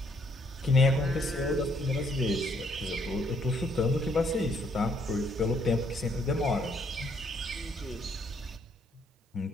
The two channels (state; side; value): normal; both; correlation 0.69